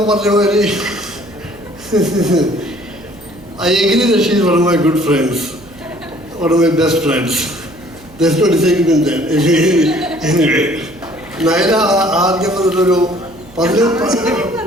മാതിരി I agree that she is one of my good friends, one of my best friends. There's no disagreement there. Anyway, Nayana ആദ്യം ഒരു 15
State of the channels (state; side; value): noise; right; hum, 24 dB below the sound